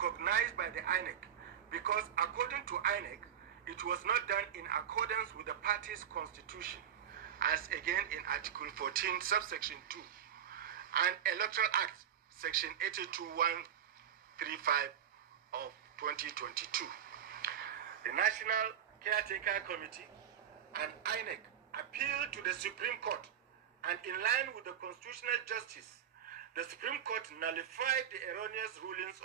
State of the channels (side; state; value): left; quieter; 9.2 dB